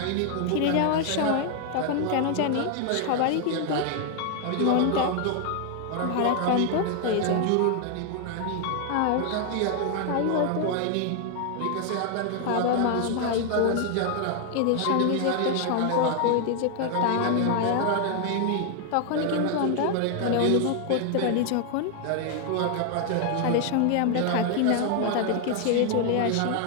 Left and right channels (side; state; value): both; different; correlation 0.00